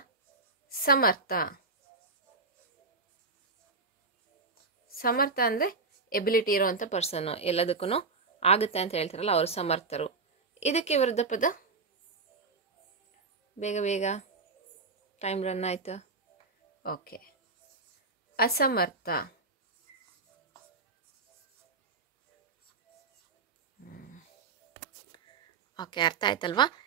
ಸಮರ್ಥ. ಸಮರ್ಥ ಅಂದರೆ ಎಬಿಲಿಟಿ ಇರೋವಂಥ ಪರ್ಸನ್ನು, ಎಲ್ಲದಕ್ಕೂ ಆಗುತ್ತೆ ಅಂತ ಹೇಳ್ತಾರಲ್ಲ ಅವರು ಸಮರ್ಥರು. ಇದಕ್ಕೆ ವಿರುದ್ಧ ಪದ? ಬೇಗ ಬೇಗ, ಟೈಮ್ ರನ್ ಆಯಿತು. ಓಕೆ, ಅಸಮರ್ಥ. ಓಕೆ, ಅರ್ಥ ಆಯ್ತಲ್ವಾ?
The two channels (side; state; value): left; quieter; 4.1 dB